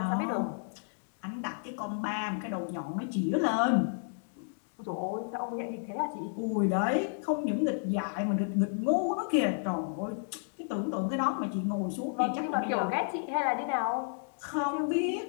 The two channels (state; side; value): silent; right; digital silence